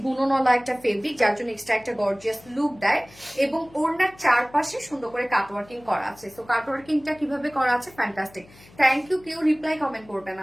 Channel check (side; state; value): left; noise; hum, 25 dB below the sound